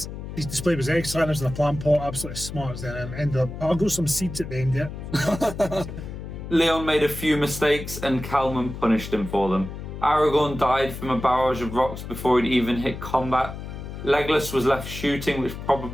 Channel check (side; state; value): left; noise; hum, 9 dB below the sound